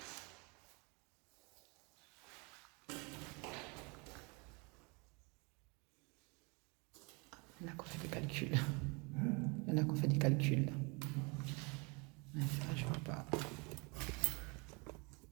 Il y en a qui ont fait des calculs. Il y en a qui ont fait des calculs. Mais ça, je vois pas.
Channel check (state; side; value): quieter; left; 30.2 dB